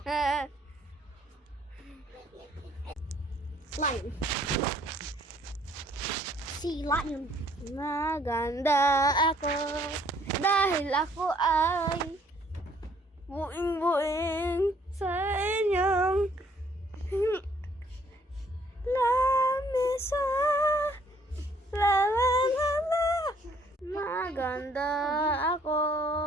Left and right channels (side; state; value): both; normal; correlation 0.63